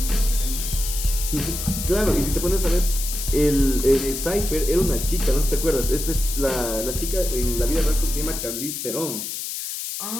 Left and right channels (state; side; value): noise; left; hiss, 5 dB below the sound